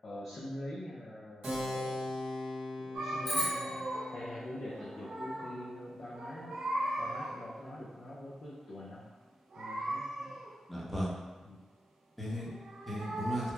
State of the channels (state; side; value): normal; both; correlation 0.87